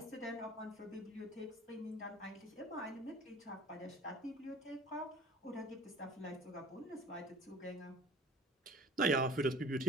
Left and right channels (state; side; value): normal; both; correlation 0.45